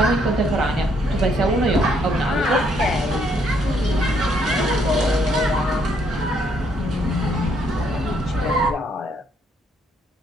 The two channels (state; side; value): normal; both; correlation 0.70